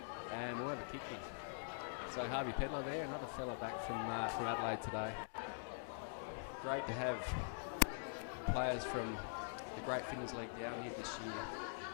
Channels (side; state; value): right; silent; digital silence